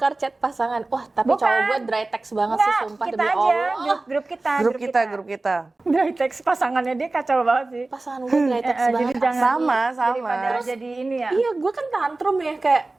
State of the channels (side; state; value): left; quieter; 3.2 dB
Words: chat pasangan. Wah, tapi Bukan. cowok gue dry text banget sih, Enggak, sumpah kita demi aja, Allah. grup kita. Grup kita. Dari teks pasangannya dia kacau banget sih. Pasangan gue dry text Jadi banget. jangan Sama. daripada jadi ini ya. Iya, gue kan tantrum ya, kayak